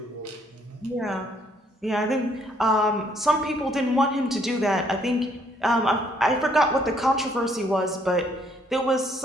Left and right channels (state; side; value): normal; both; correlation 0.67